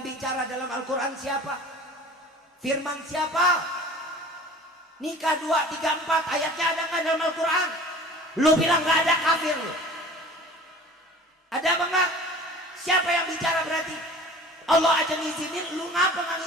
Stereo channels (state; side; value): normal; both; correlation 0.43